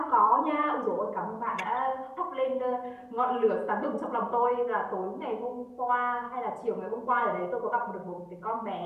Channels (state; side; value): identical; both; correlation 1.00